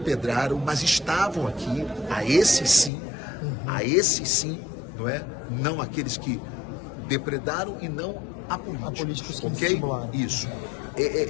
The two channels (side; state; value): right; drops out; at 2.9 s